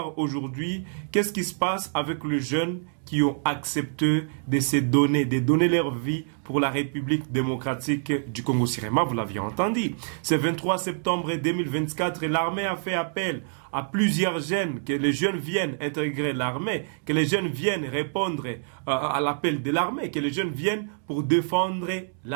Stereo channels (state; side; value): silent; left; 61 dB below the other